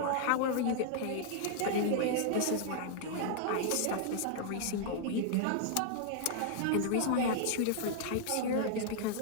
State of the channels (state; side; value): different; both; correlation -0.01